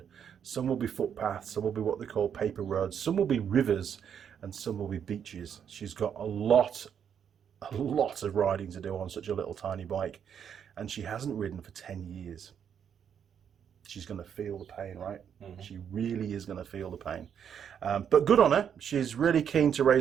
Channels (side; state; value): left; quieter; 8.2 dB